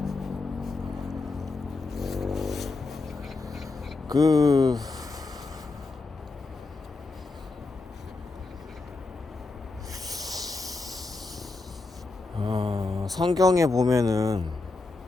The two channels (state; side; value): quieter; right; 3.6 dB